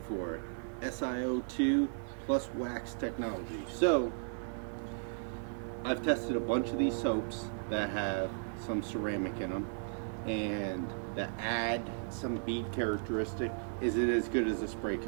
for SiO2 plus wax technology. So, I've tested a bunch of these soaps that have some ceramic in them, and that add some bead characteristic. Is it as good as a spray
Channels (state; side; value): silent; left; 54 dB below the other